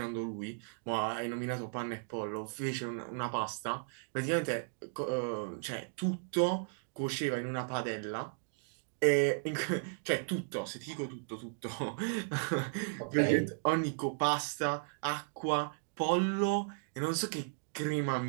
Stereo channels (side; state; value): left; silent; digital silence